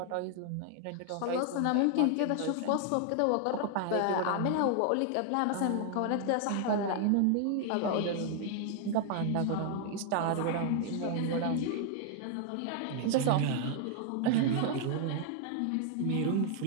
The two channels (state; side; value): different; both; correlation 0.00